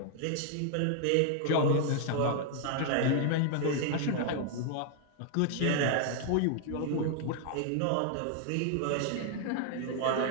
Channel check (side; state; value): both; different; correlation 0.00